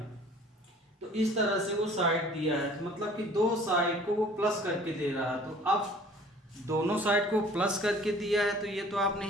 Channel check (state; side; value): normal; both; correlation 0.51